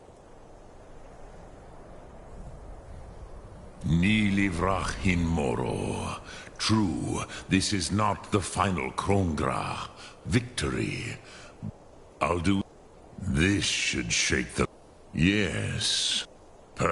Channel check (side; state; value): both; identical; correlation 1.00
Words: Ni livrach hin moro. True, this is not the final Kongrach victory. Alduin, this should shake the... Yes,